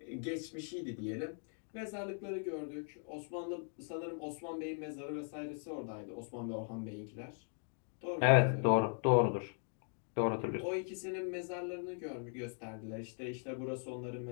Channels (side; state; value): right; silent; 52 dB below the other